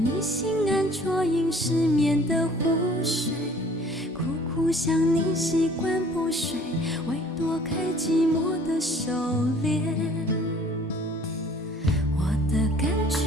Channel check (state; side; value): normal; both; correlation 0.53